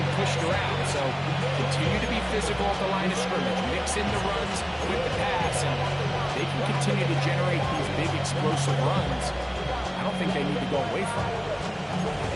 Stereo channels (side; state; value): both; identical; correlation 1.00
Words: pushed around. So continue to be physical at the line of scrimmage. Mix in the runs with the pass. And they can continue to generate these big explosive runs. I don't think they need to go away from it.